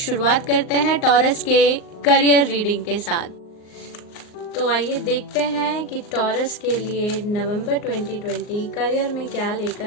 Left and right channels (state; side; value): late; right; 38 ms